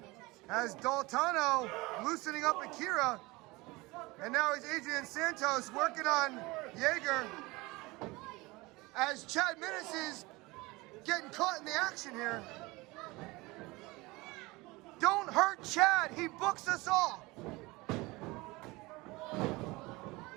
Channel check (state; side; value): quieter; left; 22.6 dB